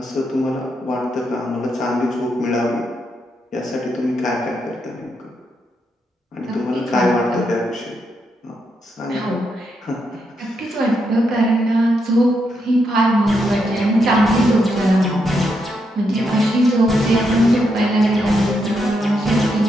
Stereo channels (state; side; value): normal; both; correlation 0.81